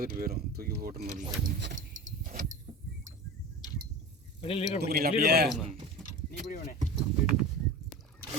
போயிடும், தூக்கி போட்டுன்னு.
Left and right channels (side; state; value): both; normal; correlation 0.32